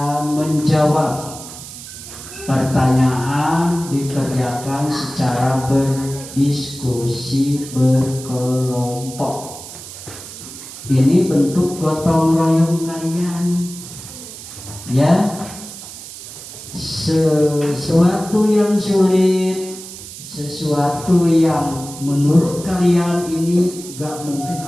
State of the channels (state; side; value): noise; right; hiss, 13 dB below the sound